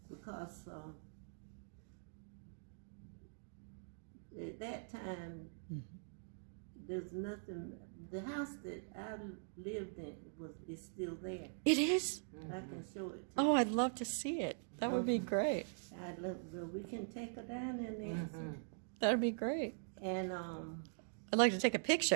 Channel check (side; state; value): left; silent; digital silence